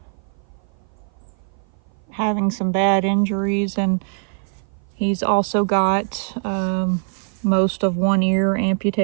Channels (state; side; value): silent; left; 56 dB below the other